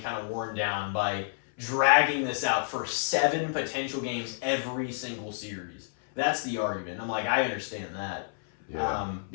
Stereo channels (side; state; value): right; silent; 58 dB below the other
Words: of worn down by dragging this out for 7 potential games every single series. That's the argument. I'm like, I understand that. yeah,